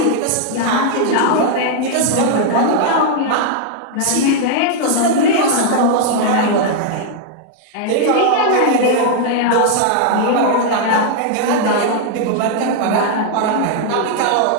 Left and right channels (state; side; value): different; both; correlation 0.00